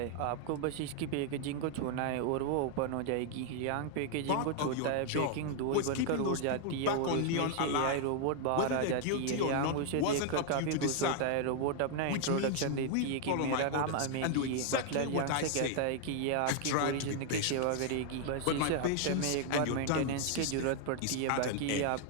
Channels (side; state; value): both; different; correlation 0.00